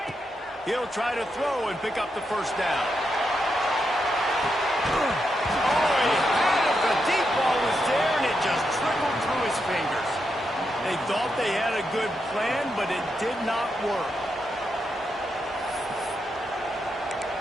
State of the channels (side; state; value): both; normal; correlation 0.84